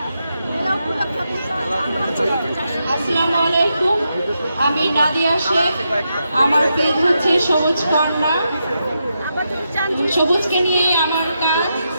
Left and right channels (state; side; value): inverted; both; correlation -0.84